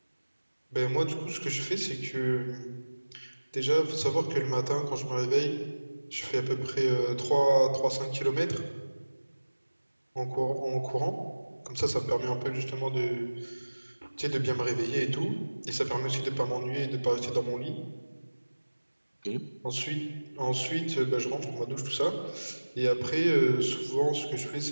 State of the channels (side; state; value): both; inverted; correlation -1.00